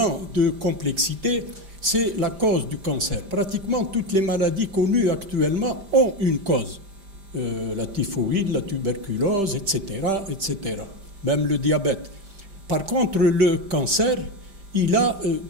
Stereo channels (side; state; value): left; late; 5.1 ms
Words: de complexité, c'est la cause du cancer. Pratiquement toutes les maladies connues actuellement ont une cause. La typhoïde, la tuberculose, etc., etc. Même le diabète. Par contre, le cancer, il a